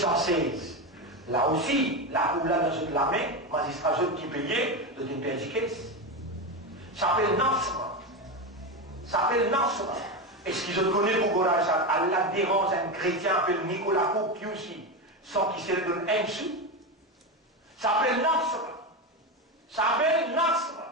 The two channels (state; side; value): normal; both; correlation 0.16